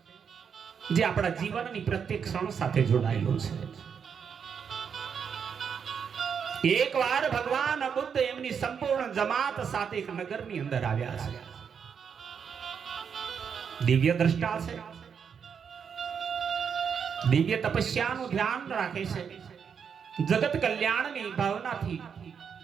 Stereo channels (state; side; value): quieter; left; 6.9 dB